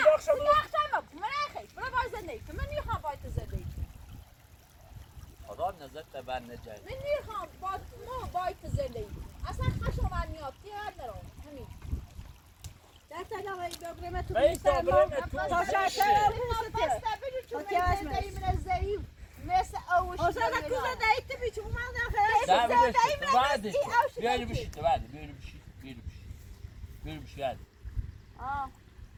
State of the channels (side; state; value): both; identical; correlation 1.00